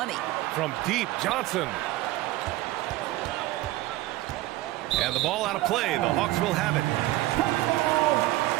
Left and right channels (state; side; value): quieter; left; 17.2 dB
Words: From deep, Johnson. And the ball out of play. The Hawks will have it.